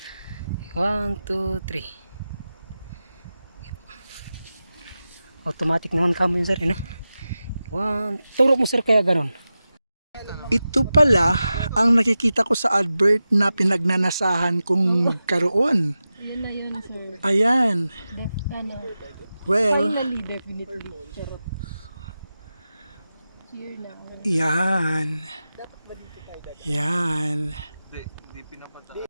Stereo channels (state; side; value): inverted; both; correlation -0.93